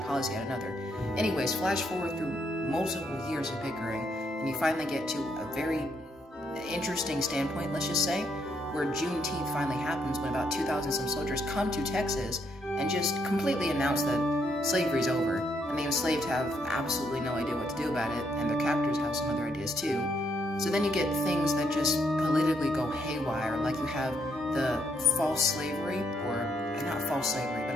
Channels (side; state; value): both; normal; correlation 0.75